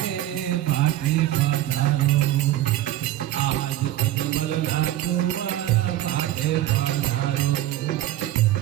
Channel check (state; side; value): quieter; left; 14.1 dB